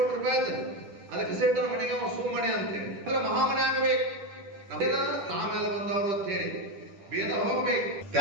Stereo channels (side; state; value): left; late; 10 ms